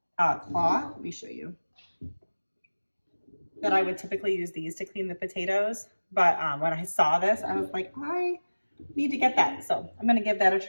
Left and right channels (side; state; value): both; inverted; correlation -1.00